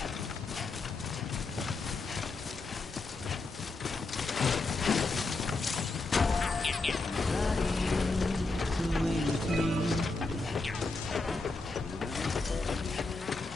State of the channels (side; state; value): right; quieter; 3.5 dB